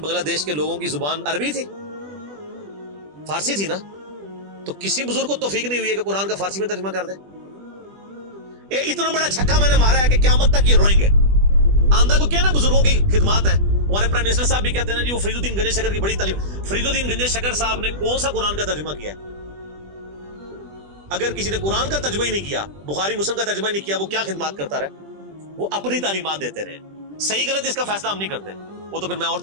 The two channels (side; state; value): left; late; 20 ms